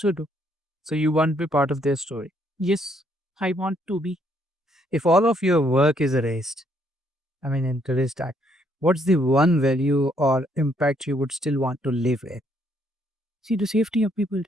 do. So you want to be part of their story. Yes, I want to be. If all of your work is erased, I mean, in today's time, what's the one value or impact you would still want to live in? See the safety of people,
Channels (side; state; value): both; normal; correlation 0.70